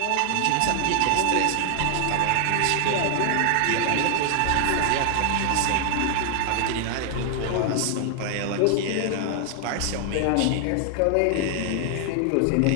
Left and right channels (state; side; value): different; both; correlation 0.00